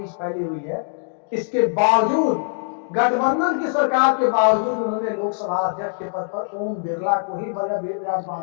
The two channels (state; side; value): silent; right; digital silence